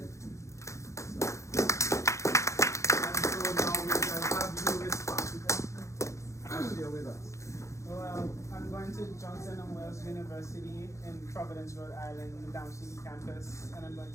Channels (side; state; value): right; late; 0.14 ms